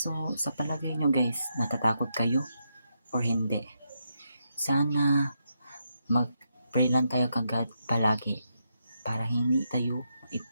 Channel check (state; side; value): inverted; both; correlation -0.82